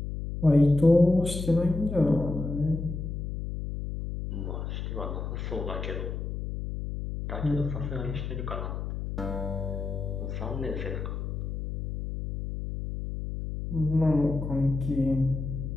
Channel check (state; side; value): noise; left; hum, 5 dB below the sound